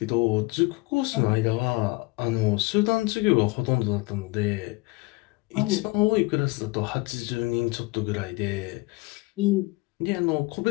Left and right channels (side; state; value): right; quieter; 23.6 dB